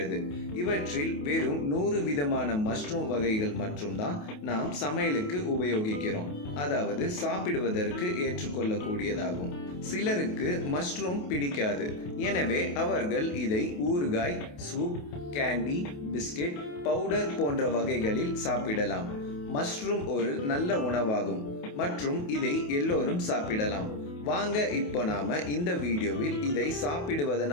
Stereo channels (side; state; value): right; late; 28 ms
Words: இவற்றில் வெறும் 100 விதமான மஷ்ரூம் வகைகள் மட்டும்தான் நாம் சமையலுக்கு உபயோகிக்கிறோம், அதாவது சாப்பிடுவதற்கு ஏற்றுக்கொள்ளக்கூடியதாகும். சிலருக்கு மஷ்ரூம் பிடிக்காது, எனவே அவர்கள் இதை ஊறுகாய், சூப், கேண்டி, பிஸ்கெட், பவுடர் போன்ற வகைகளில் சாப்பிடலாம். மஷ்ரூம் ஒரு நல்ல உணவாகும் மற்றும் இதை எல்லோரும் சாப்பிடலாம். வாங்க இப்போ நாம இந்த வீடியோவில் இதை